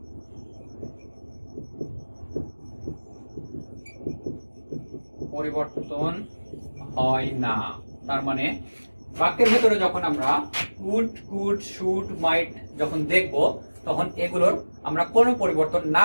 পরিবর্তন হয় না, তার মানে বাক্যের ভেতরে যখন আমরা উড, কুড, শুড, মাইট যখন দেখব তখন এগুলোর আমরা কোনো পরিবর্তন না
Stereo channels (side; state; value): both; inverted; correlation -1.00